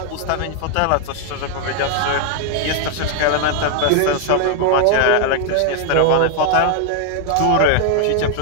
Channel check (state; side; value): different; both; correlation 0.00